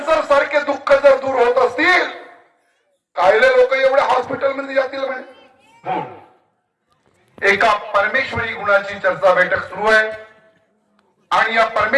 सारखे दुःख जर दूर होत असतील, कायले लोक एवढ्या हॉस्पिटलमध्ये जातील म्हणे. एका परमेश्वरी गुणाची चर्चा बैठक सुरू आहे आणि या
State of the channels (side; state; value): both; identical; correlation 1.00